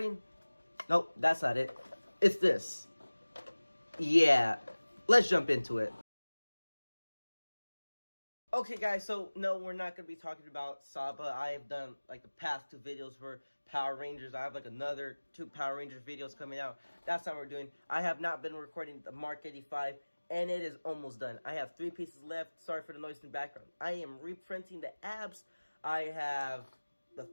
Nope, that's not it. It's this. Yeah, let's jump into it. Okay, guys, so no, we're not going to be talking about Saba. I have done, like, the past 2 videos for Power Rangers. I have, like, another 2 Power Rangers videos coming out. That's not what we're doing. I have not been recording the MK85, and it is almost done. I have 3 pieces left. Sorry for the noise in the background. I am reprinting the abs. I have the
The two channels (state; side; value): inverted; both; correlation -1.00